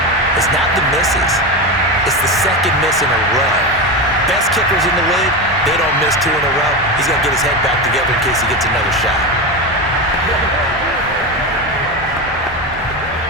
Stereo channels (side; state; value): both; normal; correlation 0.18